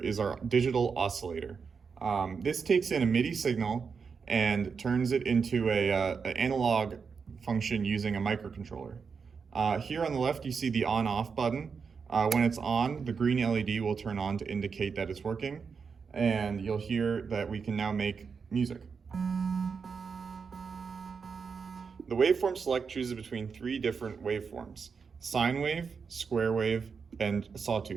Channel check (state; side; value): quieter; left; 5.6 dB